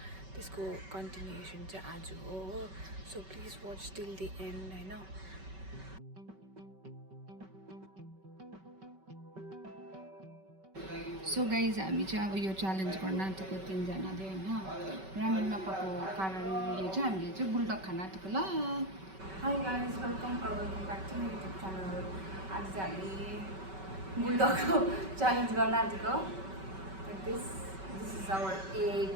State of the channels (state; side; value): late; left; 5.2 ms